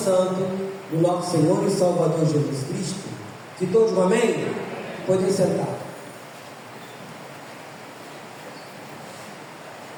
do nosso Senhor e Salvador Jesus Cristo. Que todos, amém? Podem sentar.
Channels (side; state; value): both; identical; correlation 1.00